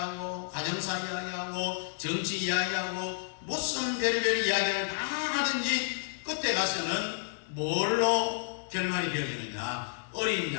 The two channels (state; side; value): silent; right; digital silence